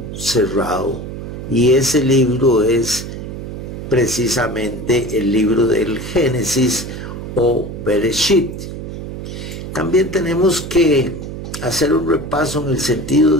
cerrado, y ese libro es precisamente el libro del Génesis o Bereshit. También tenemos que hacer un repaso en el sentido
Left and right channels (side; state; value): right; noise; hum, 8 dB below the sound